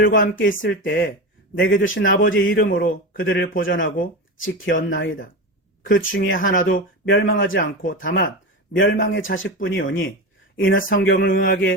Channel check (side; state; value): both; normal; correlation 0.22